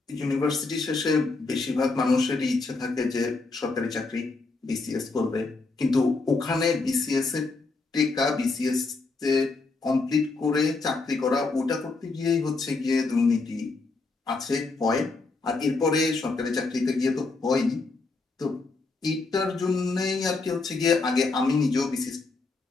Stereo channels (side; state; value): right; quieter; 3.8 dB